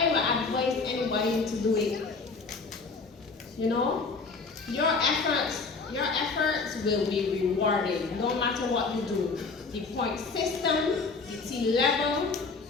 would advise anybody to do it. You know, your efforts will be rewarded no matter what you do. The point system, the T level,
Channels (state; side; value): quieter; right; 4.4 dB